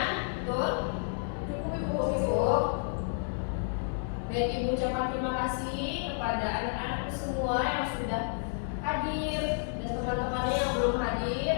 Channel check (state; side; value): silent; right; 57 dB below the other